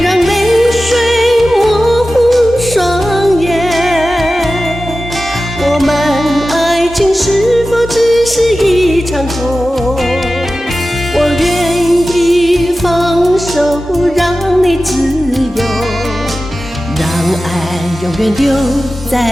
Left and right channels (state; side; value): normal; both; correlation 0.94